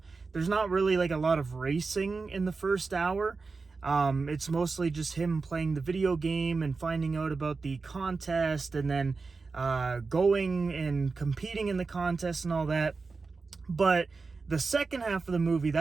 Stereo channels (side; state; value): left; quieter; 4.3 dB